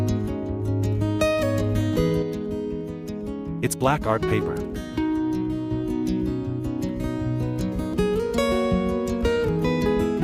It's black art paper.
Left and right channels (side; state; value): both; identical; correlation 1.00